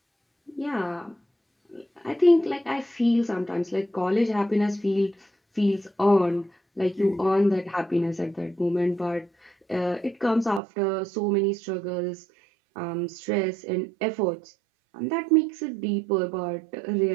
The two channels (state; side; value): drops out; left; at 10.6 s